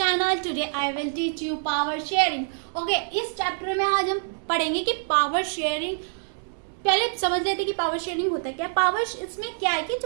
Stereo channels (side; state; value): left; silent; digital silence